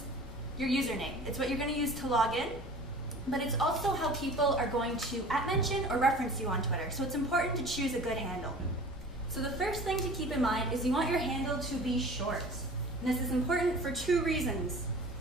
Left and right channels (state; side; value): normal; both; correlation 0.42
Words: your username. It's what you're going to use to log in, but it's also how people are going to @mention or reference you on Twitter, so it's important to choose a good handle. So the first thing to keep in mind is you want your handle to be short. And this is important for two reasons.